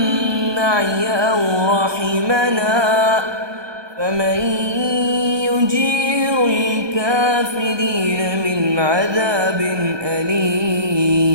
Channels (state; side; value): late; left; 1.2 ms